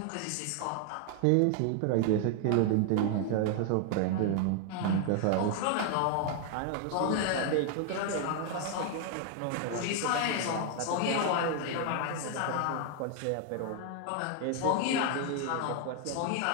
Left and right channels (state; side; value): different; both; correlation 0.00